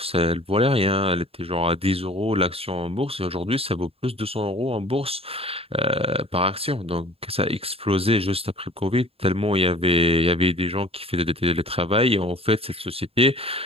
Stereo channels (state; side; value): late; left; 0.28 ms